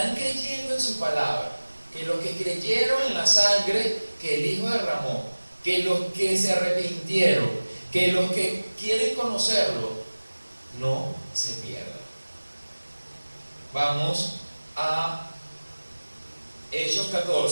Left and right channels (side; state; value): both; inverted; correlation -1.00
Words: creyendo en su palabra, que los que creyeron en la sangre que el Hijo derramó, que los que se arrepintieron, que los que quieren conocerlo, no se pierdan. Vamos a Hechos